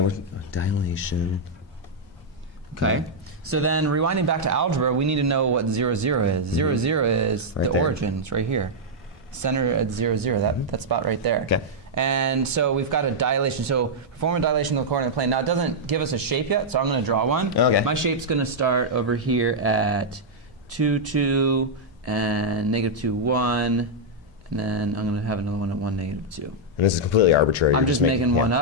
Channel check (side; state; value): both; normal; correlation -0.05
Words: dilation. Okay. So then, rewinding back to algebra, we need to know what 0, 0 is. 0, 0 is the origin. It's right here. Center at 0, 0. That spot right there. Okay. And so we've got a dilation. So perform a dilation of the coordinate plane. Now it doesn't give us a shape yet, so I'm going to draw one. Okay. My shape's going to start over here at 2, 2, and negative 2, 1, and then I'm going to have another one at 1, negative 2. And this is completely arbitrary. I'm just making one